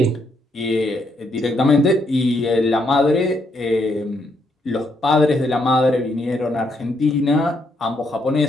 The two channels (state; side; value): normal; both; correlation 0.76